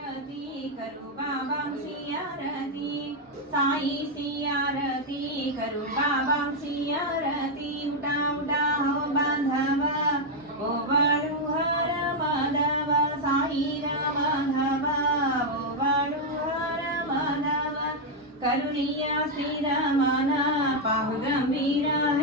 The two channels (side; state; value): both; normal; correlation 0.00